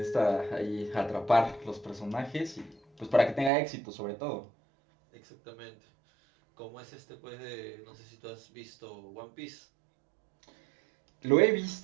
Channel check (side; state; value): left; drops out; at 3.5 s